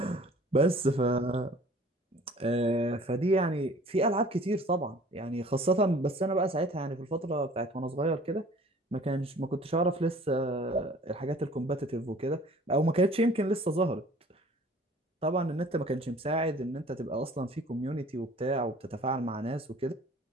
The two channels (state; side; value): normal; both; correlation 0.50